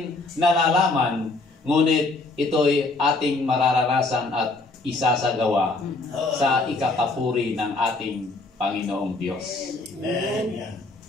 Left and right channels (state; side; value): quieter; right; 3.3 dB